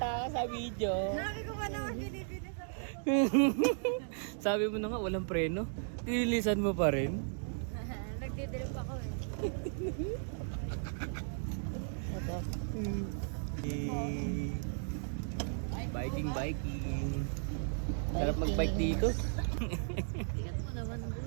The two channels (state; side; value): silent; left; digital silence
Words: ka sa video. Sabi ko pa naman binibili sa Sabi mo na nga, walang preno. Tinilisan mo pa rin. Nagdidrip ako eh. Ito. Biking. Sarap mag-bike dito. Ingat mo naman,